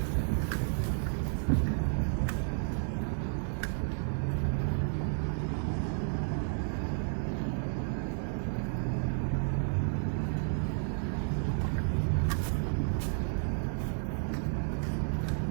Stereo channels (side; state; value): left; silent; 56 dB below the other